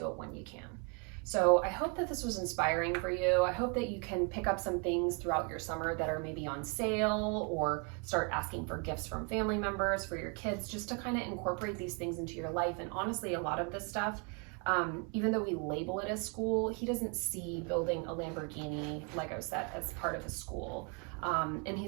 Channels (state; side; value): quieter; left; 35.8 dB